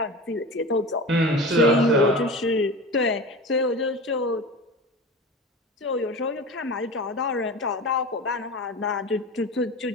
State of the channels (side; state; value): both; normal; correlation 0.31